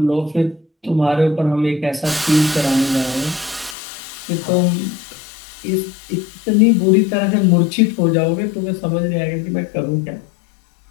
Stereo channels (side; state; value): right; drops out; at 3.8 s